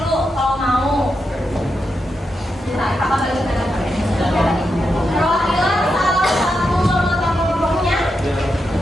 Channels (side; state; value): both; normal; correlation 0.86